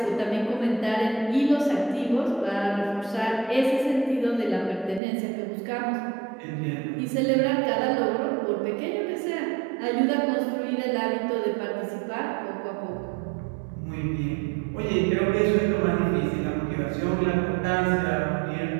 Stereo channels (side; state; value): left; drops out; at 5.0 s